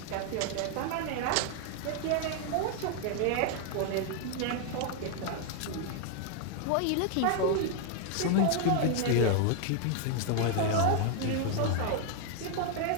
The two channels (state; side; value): different; both; correlation 0.00